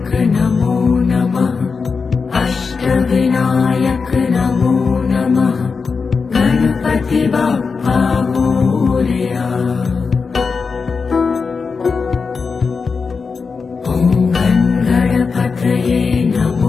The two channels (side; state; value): right; quieter; 5.0 dB